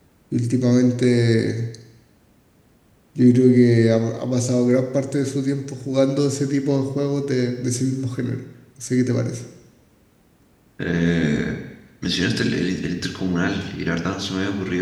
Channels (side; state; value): both; identical; correlation 1.00